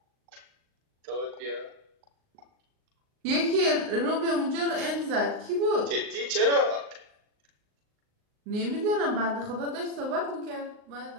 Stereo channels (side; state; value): left; late; 38 ms